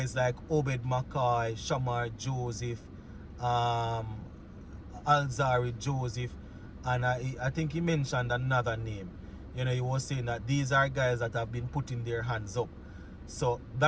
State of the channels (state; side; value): identical; both; correlation 1.00